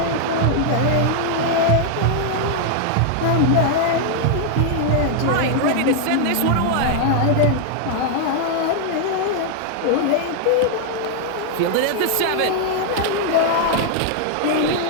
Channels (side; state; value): both; different; correlation 0.00